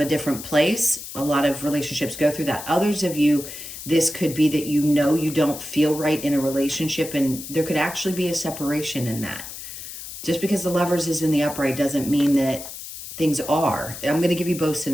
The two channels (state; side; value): noise; left; hiss, 11 dB below the sound